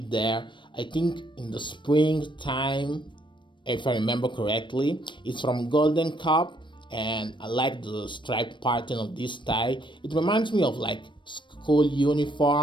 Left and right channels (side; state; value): right; late; 0.23 ms